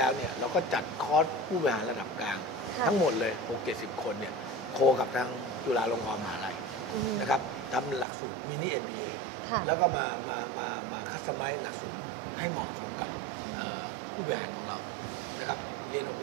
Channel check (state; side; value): drops out; left; at 8.1 s